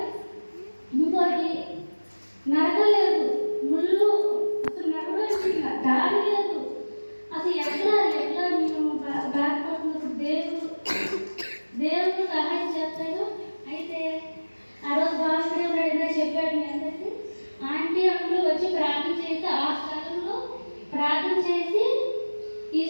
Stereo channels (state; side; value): inverted; both; correlation -1.00